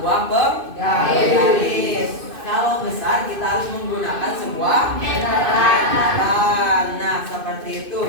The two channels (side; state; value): left; late; 2.5 ms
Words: penggaris. Kalau besar kita harus menggunakan sebuah meteran. Nah, seperti itu